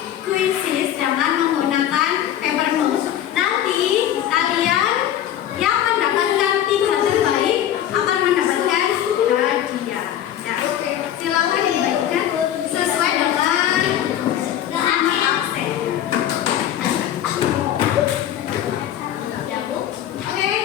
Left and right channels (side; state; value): right; quieter; 11.2 dB